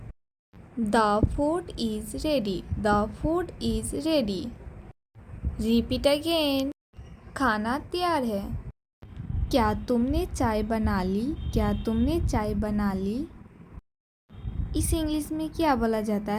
The food is ready, the food is ready. Repeat again. खाना तैयार है। क्या तुमने चाय बना ली? क्या तुमने चाय बना ली? इस इंग्लिश में क्या बोला जाता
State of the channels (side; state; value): both; identical; correlation 1.00